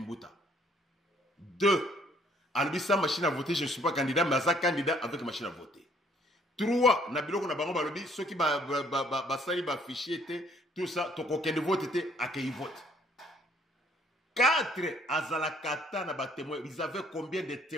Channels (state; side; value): normal; both; correlation 0.63